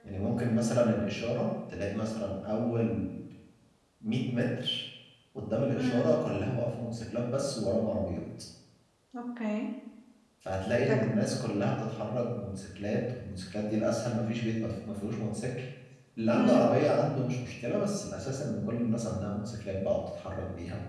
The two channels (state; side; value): identical; both; correlation 1.00